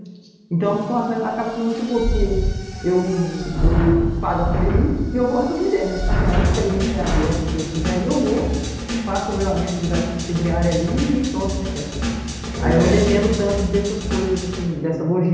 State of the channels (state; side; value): identical; both; correlation 1.00